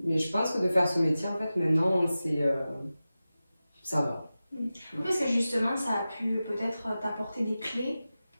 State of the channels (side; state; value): both; inverted; correlation -0.95